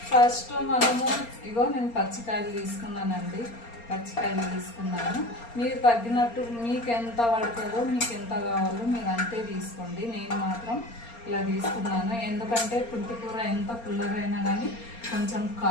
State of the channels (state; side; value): late; right; 4.3 ms